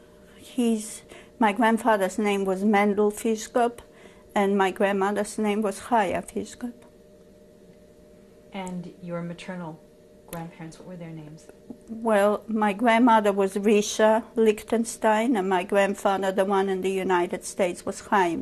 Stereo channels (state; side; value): identical; both; correlation 1.00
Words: My grandfather's name was Mendel Fiszgop, and my grandmother's name was Chaya Fiszgop. And your maternal grandparents, what were their names? Well, my grandmother was Risha Lichtenstein, and my grandfather, the one in the United States, was